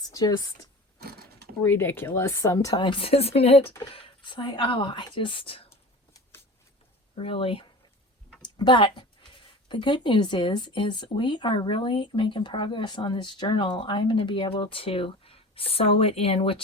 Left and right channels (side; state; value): both; normal; correlation 0.37